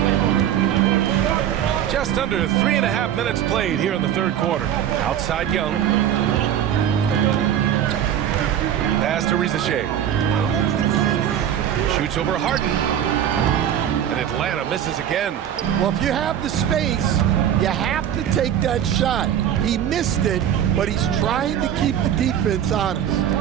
Just under 3.5 minutes played here in the third quarter. Outside Young. Pass to Risacher. Shoots over Harden. And Atlanta misses again. Well, if you have the space, you have to take that shot. He missed it, but he's trying to keep the defense honest.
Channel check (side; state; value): left; quieter; 10.1 dB